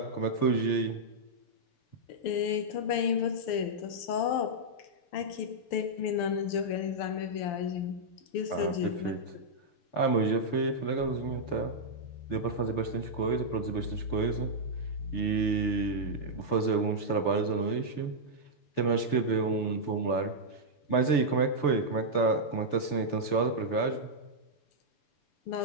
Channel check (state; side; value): late; right; 6.9 ms